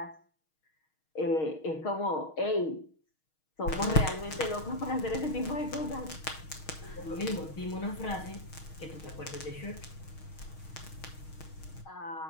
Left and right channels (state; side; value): late; right; 6.4 ms